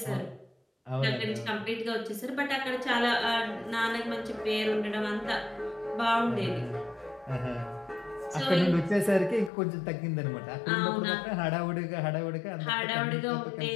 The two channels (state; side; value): drops out; right; at 9.5 s